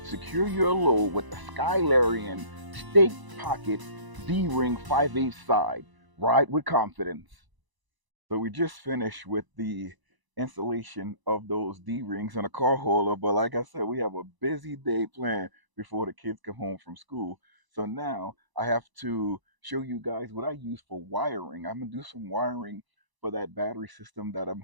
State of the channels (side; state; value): left; late; 1.0 ms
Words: Secure your load with the Skylarian Stake Pocket D-ring 5/8 side. Ride with confidence. So we just finished with the installation of those D-rings in a car hauler, but like I said, we have a busy day planned before the kids come home from school. So now I have to show you guys what I use for wiring. I'm gonna do some wiring for that battery system that I'm